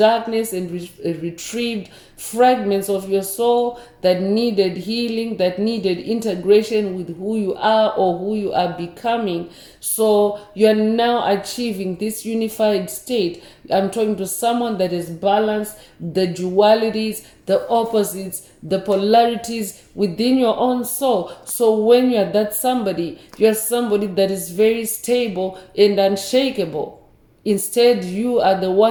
and retrieved fragments of your soul that needed healing, that needed integration with who you are or who you are becoming. So you're now achieving this unified state. I'm talking to someone that is balanced, the dualities, the opposites, the polarities within your own soul. So when you're that somebody, you're somebody that is very stable and unshakable. Instead, you are the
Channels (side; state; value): both; identical; correlation 1.00